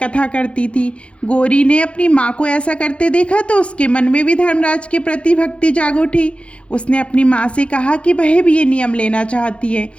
करती थी। गौरी ने अपनी माँ को ऐसा करते देखा तो उसके मन में भी धर्मराज के प्रति भक्ति जाग उठी। उसने अपनी माँ से कहा कि वह भी ये नियम लेना चाहती है।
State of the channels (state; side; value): late; right; 0.060 ms